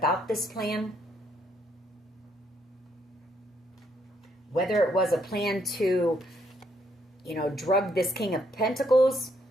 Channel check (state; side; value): normal; both; correlation 0.72